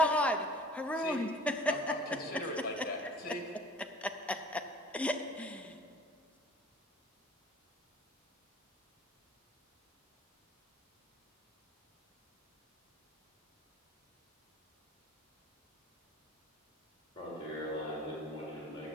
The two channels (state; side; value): normal; both; correlation 0.47